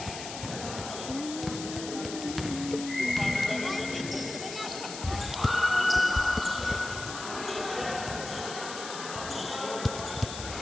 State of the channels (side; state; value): left; noise; hiss, 9 dB below the sound